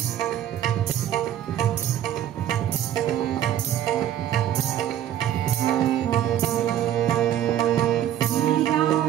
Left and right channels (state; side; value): quieter; left; 11.1 dB